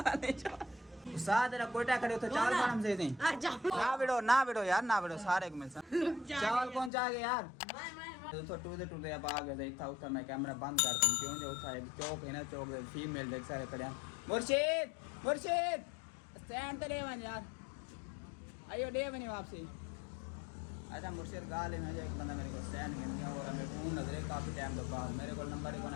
नहीं छोड़ साथ तेरा कोयटा खड़े उधर चावल खाना से नहीं ना बिड़ो यार ना बिड़ो सारे को मिल चावल कौन चाह गए यार तो टूटे अब आ गए था उधर मैं कैमरा बंद कर दूं क्यों जो था चौक है ना चौक फीमेल देख सारे खड़े मुर्शिद स्टैंड तो ले वन यार आइयो दे बनी वापसी अच्छा मुर्शिद गाल में एक बंदा मेरे को स्टैंड में दिया और मैं फोन नजरे काफ़ी टाइम के बाद मेरे को नंबर ही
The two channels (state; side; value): drops out; right; at 6.9 s